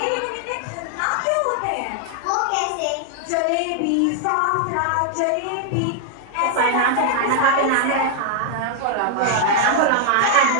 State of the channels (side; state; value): both; different; correlation 0.00